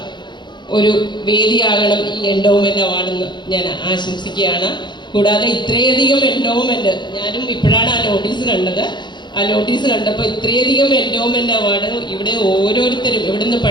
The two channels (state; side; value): late; right; 0.22 ms